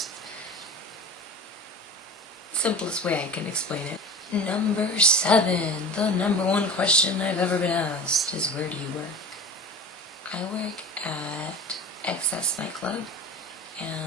simplest way I can explain it. Number 7, the number 1 question I've ever been asked is, where do you work? I work at Excess Nightclub,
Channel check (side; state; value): both; normal; correlation 0.34